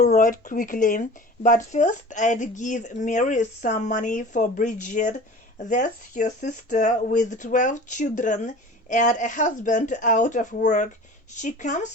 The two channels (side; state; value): both; normal; correlation 0.39